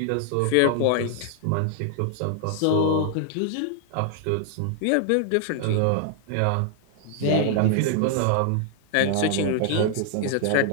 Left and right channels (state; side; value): different; both; correlation 0.00